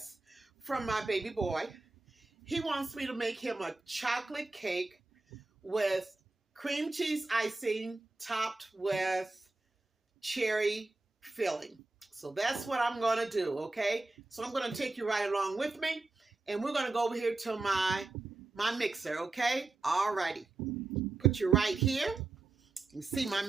from my baby boy. He wants me to make him a chocolate cake with cream cheese icing topped with cherry filling. So that's what I'm going to do, okay? So I'm going to take you right along with me, and we're going to go over here to my mixer, okay? All righty. Put you right here. You see my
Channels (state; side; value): quieter; left; 3.4 dB